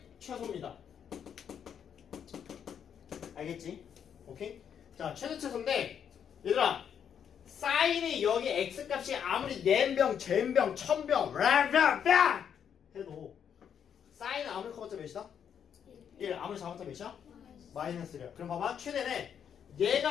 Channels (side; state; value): right; quieter; 8.2 dB